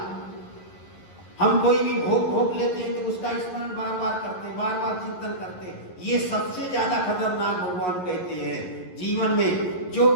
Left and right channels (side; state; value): right; late; 11 ms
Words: हम कोई भी भोग लेते हैं तो उसका स्मरण बार बार करते हैं, बार बार चिंतन करते हैं। ये सबसे ज्यादा खतरनाक भगवान कहते हैं। जीवन में जो